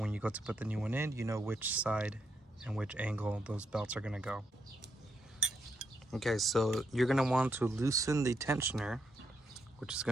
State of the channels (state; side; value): normal; both; correlation 0.79